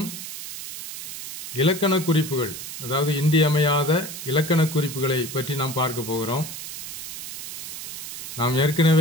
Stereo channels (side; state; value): right; noise; hiss, 9 dB below the sound